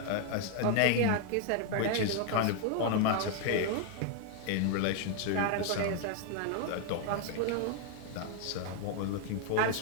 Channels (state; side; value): different; both; correlation 0.01